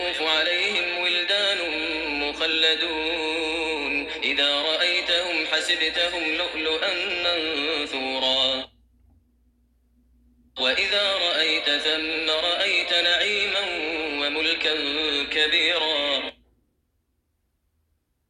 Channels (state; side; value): identical; both; correlation 1.00